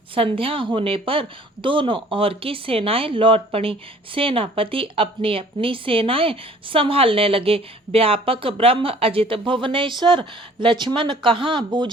संध्या होने पर दोनों ओर की सेनाएं लौट पड़ी। सेनापति अपनी अपनी सेनाएं संभालने लगे। व्यापक ब्रह्म अजित भुवनेश्वर, लक्ष्मण कहाँ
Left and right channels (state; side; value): normal; both; correlation 0.53